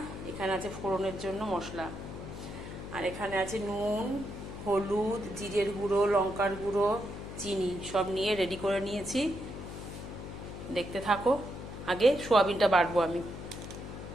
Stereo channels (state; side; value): noise; left; hum, 10 dB below the sound